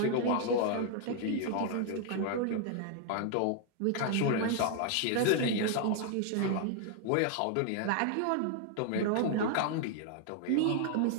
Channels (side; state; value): both; different; correlation 0.00